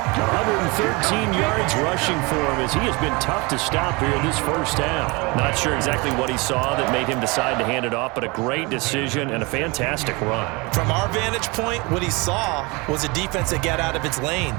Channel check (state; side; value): quieter; left; 26.7 dB